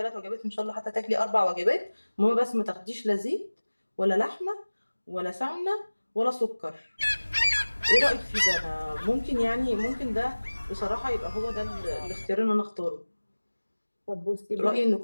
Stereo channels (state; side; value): inverted; both; correlation -1.00